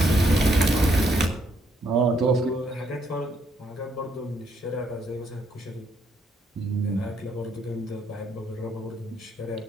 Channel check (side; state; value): both; normal; correlation 0.72